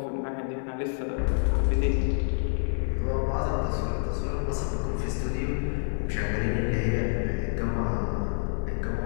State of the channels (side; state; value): right; silent; digital silence